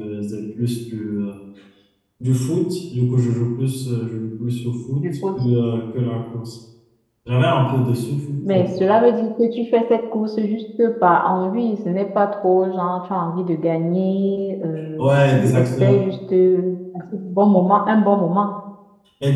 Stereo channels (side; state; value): both; identical; correlation 1.00